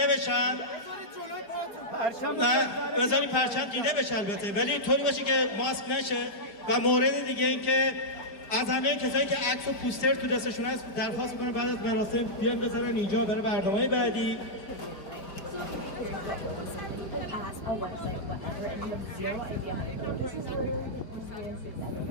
بشن. نه بذاری پرچم دیده بشه البته، ولی طوری باشه که ماسک نشه. و مورد دیگه این که از همه کسایی که عکس و پوستر تو دستشون هست درخواست میکنم بعد از مراسم بیان بذارن اینجا برای برنامه بعدی.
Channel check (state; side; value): late; right; 5.0 ms